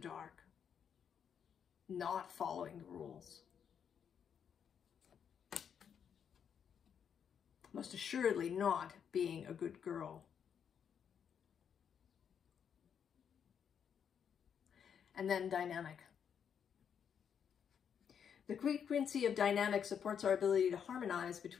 not following the rules. Most assuredly not being a good girl. And then dynamic. The frequency of dynamic supports our ability to harmonize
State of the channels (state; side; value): quieter; right; 7.8 dB